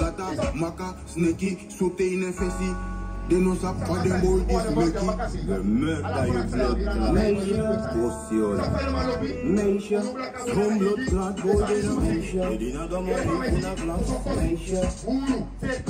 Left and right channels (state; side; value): identical; both; correlation 1.00